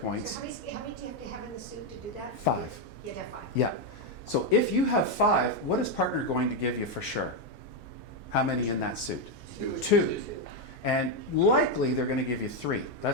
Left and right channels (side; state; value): both; normal; correlation 0.04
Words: So how many do you have to have in the suit to do that? 5. You'd have 5. Yeah. So if you have 5, what is partner going to give you for sure? How many in that suit? 2. And likely they're going to give you 3.